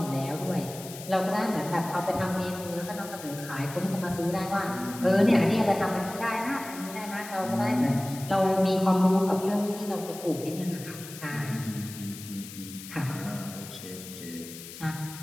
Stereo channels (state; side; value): noise; left; hiss, 13 dB below the sound